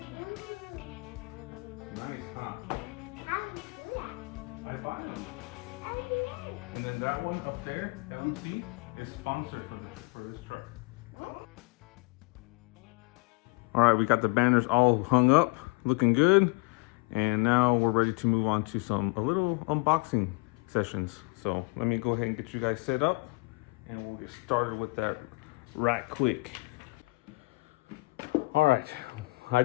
Nice, huh? How do you do that? I buy them. How do you do that? And then that one up there, LC, is sponsored for this truck. All right, we got the banners all hung up, looking good. And now we're ready to move on to a little unboxing sessions. So let me go ahead and get you guys set up and we'll get started with that right quick. All right, I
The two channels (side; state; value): right; quieter; 26.6 dB